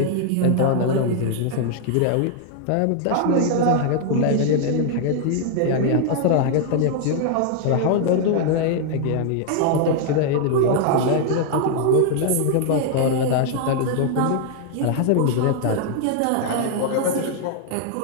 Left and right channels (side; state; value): both; different; correlation 0.00